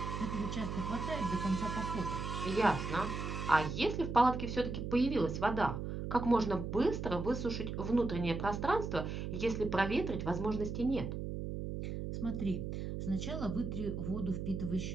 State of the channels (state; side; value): noise; right; hum, 4 dB below the sound